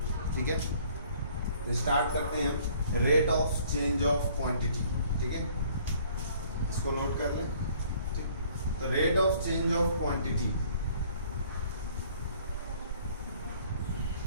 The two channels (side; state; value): both; inverted; correlation -0.57